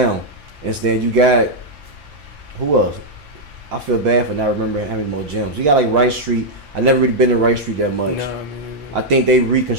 Instead, you got who else? I feel bad for not remembering how many more gyms. You got like Rice Street. I never really been to Rice Street that much. No, I think they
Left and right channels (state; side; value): late; left; 5.8 ms